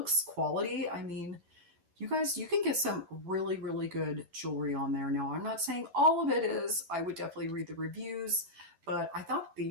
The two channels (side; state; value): left; late; 11 ms